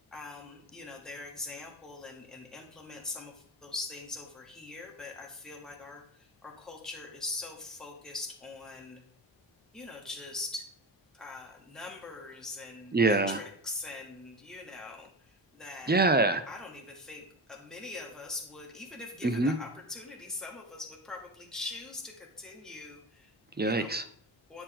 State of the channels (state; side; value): normal; both; correlation 0.24